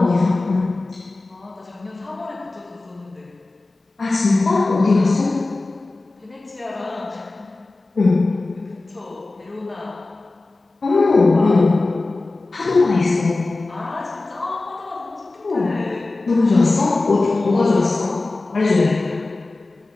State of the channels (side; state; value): right; quieter; 3.2 dB